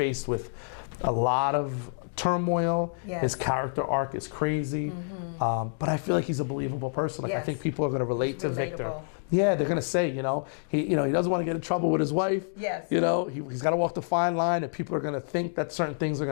with a lot of turmoil. Yes. His character arc is crazy, but I feel like he's a believable person. Like, Yes. I think people are going to relate He's to Victor. relatable. Yeah, they're going to say, you know, he doesn't want to get in trouble with his wife. Yes. You know, he's got to walk the fine line, and people are going to think that certain things are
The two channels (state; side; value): silent; right; digital silence